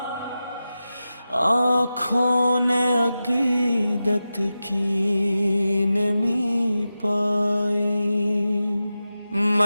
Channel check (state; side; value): inverted; both; correlation -0.93